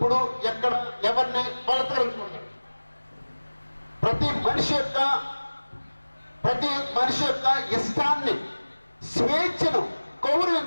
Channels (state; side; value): inverted; both; correlation -1.00